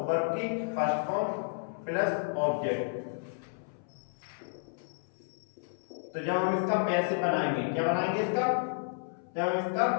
वर्ब की फर्स्ट फॉर्म प्लस ऑब्जेक्ट। तो जब हम इसका पैसिव बनाएंगे, क्या बनाएंगे इसका, जब हम इसका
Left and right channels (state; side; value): silent; right; 57 dB below the other